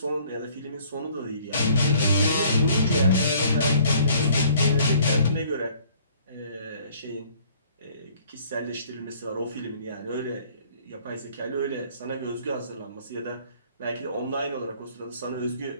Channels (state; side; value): inverted; both; correlation -0.57